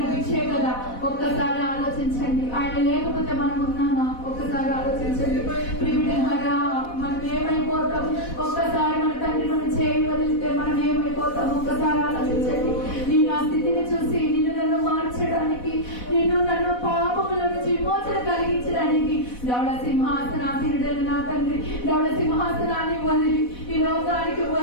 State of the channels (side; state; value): right; late; 4.1 ms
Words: భిక్షే కదా. ఒక్కసారి ఆలోచించండి. ఆయన లేకపోతే మనం ఉన్నామా? ఒక్కసారి ఆలోచించండి. ప్రియులారా, మనం ఏమైపోతాం? ఒక్కసారి మన తండ్రి మనం చేయి వదిలితే మనం ఏమైపోతాం? ఒక్కసారి ఆలోచించండి. నీ నా స్థితిని చూసి నిన్ను నన్ను మార్చడానికి, నిన్ను నన్ను పాపముల నుంచి విమోచన కలిగించడానికి దౌడ సింహాసనాధీనుడైన నా తండ్రి దౌడ సింహాసనాన్ని వదిలి ఈ లోకానికి